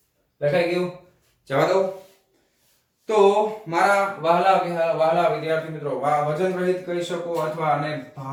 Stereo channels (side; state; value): both; identical; correlation 1.00